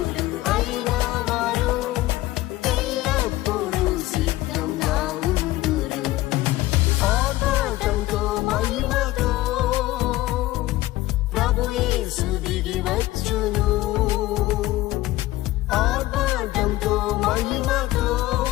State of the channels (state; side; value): quieter; right; 17.3 dB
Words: అయిన వారు ఎల్లప్పుడూ సిద్ధంగా ఉందురు ఆర్భాటంతో మహిమతో ప్రభు యేసు దిగి వచ్చును ఆర్భాటంతో మహిమతో